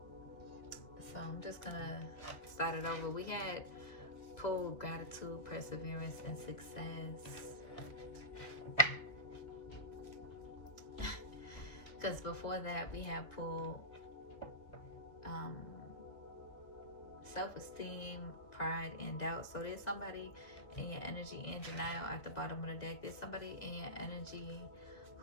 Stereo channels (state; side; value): late; right; 2.3 ms